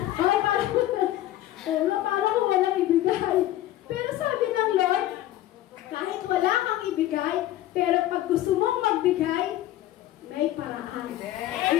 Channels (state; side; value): quieter; right; 14.2 dB